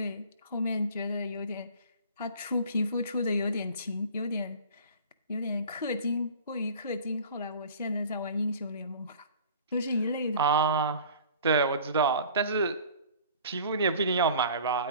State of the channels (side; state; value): both; inverted; correlation -0.45